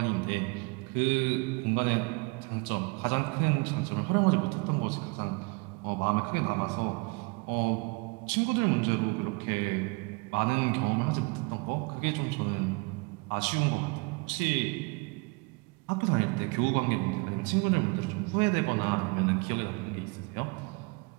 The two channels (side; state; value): left; quieter; 29.4 dB